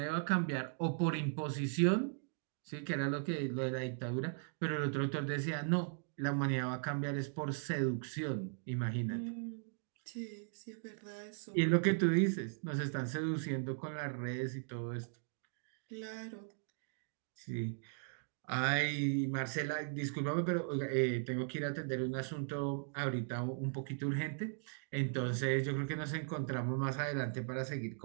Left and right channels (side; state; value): left; silent; digital silence